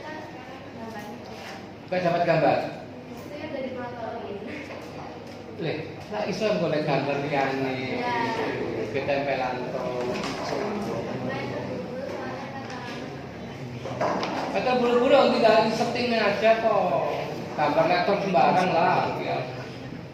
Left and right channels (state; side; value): identical; both; correlation 1.00